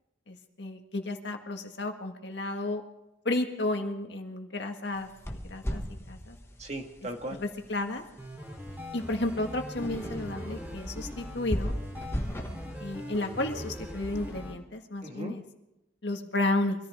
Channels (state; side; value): normal; both; correlation 0.51